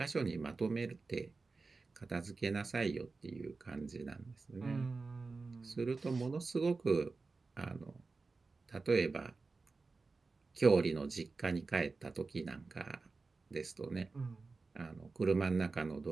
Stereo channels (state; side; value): quieter; left; 4.0 dB